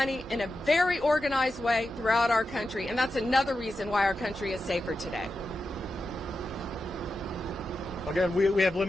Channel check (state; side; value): normal; both; correlation 0.90